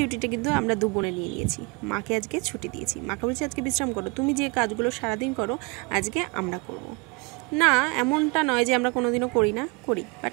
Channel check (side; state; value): left; quieter; 28.5 dB